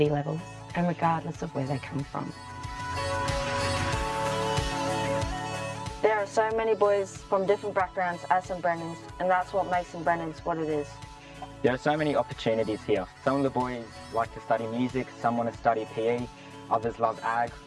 levels and regardless of where they come from. There are so many boys from different backgrounds at St Brennan's, and that's what makes St Brennan's what it is. There are so many opportunities here. Some of the boys like to study music, some want to study PE, others love ag.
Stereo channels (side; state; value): both; identical; correlation 1.00